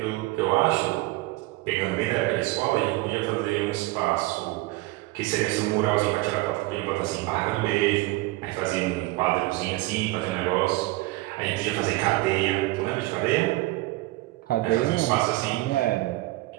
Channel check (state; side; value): quieter; left; 19.7 dB